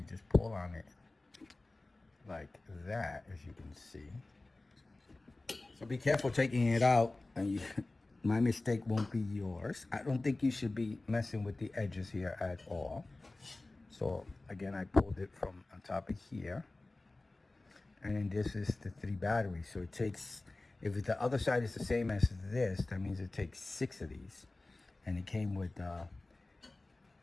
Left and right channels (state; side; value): quieter; right; 3.0 dB